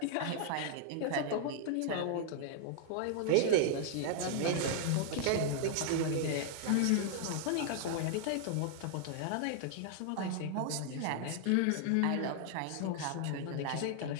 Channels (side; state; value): both; different; correlation 0.00